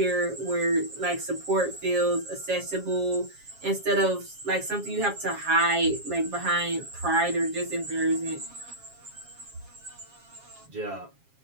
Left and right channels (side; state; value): left; late; 7.3 ms